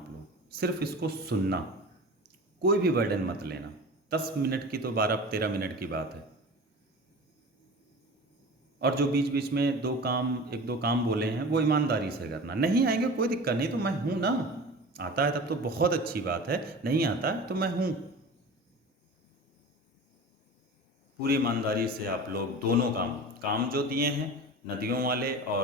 लोग सिर्फ इसको सुनना, कोई भी बर्डन मत लेना। 10 मिनट की तो 12-13 मिनट की बात है। और जो बीच बीच में एक दो काम बोले हैं वो ईमानदारी से करना। नहीं आएंगे कोई दिक्कत नहीं, तो मैं हूं ना। आता है तब तो बहुत अच्छी बात है, नहीं आता है तो मैं हूं। पूरी ईमानदारी से आप लोग दोनों काम जो दिए हैं, नदियों वाले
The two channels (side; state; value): both; normal; correlation 0.36